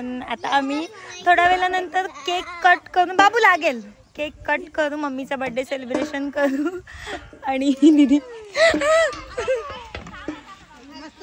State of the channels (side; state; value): both; identical; correlation 1.00